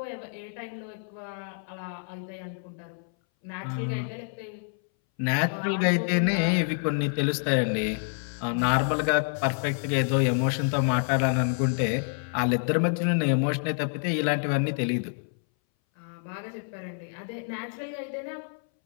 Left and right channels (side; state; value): right; silent; 60 dB below the other